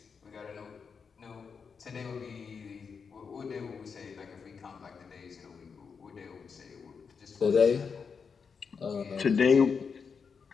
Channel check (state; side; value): quieter; right; 5.8 dB